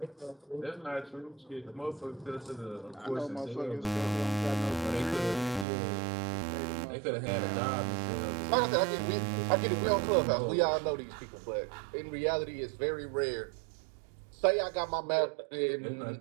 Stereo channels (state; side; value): drops out; left; at 5.7 s